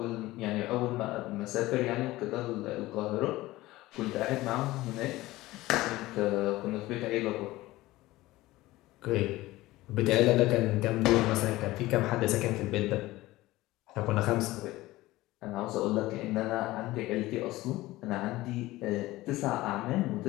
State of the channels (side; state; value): right; quieter; 18.0 dB